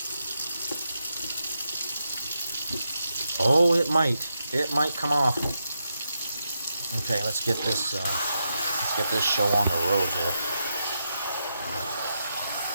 Oh, it might. It might come off. Okay, let's get this show on the road here.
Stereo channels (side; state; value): both; inverted; correlation -0.85